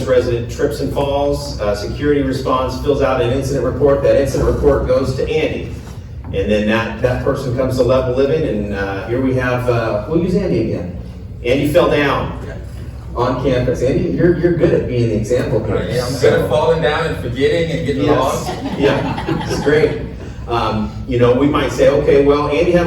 resident trips and falls, security responds, fills out an incident report, that incident report goes to Andy. And then that person comes to level living, and here we have, we'll use Andy again. Andy fell down on campus. Andy, you're good at being the example here. Yeah, I'm good at falling down and forgetting and getting lost. Yeah, it's great. We might say, okay, well, Andy had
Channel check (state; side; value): identical; both; correlation 1.00